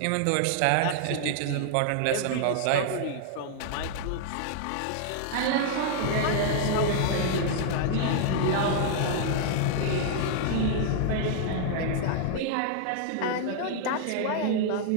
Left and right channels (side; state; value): both; different; correlation -0.01